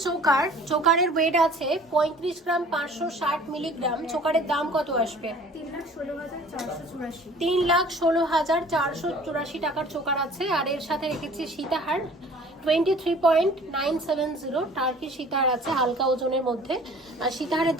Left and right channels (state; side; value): normal; both; correlation 0.49